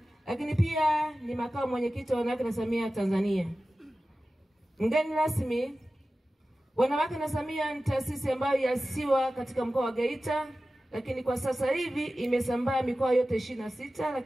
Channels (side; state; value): both; normal; correlation 0.95